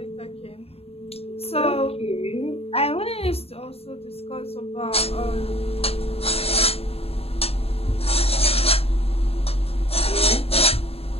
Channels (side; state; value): right; late; 0.29 ms